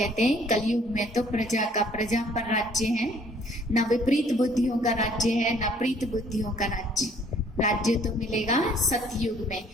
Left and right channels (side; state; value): both; normal; correlation 0.60